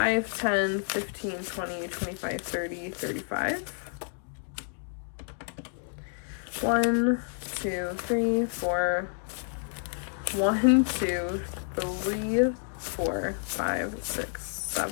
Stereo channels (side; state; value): right; silent; 58 dB below the other